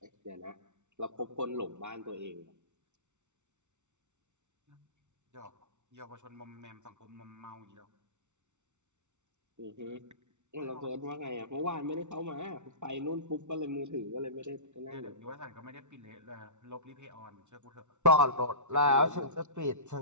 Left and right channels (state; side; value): late; left; 0.83 ms